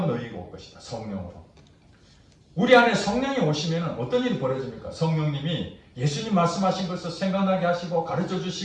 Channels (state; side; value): identical; both; correlation 1.00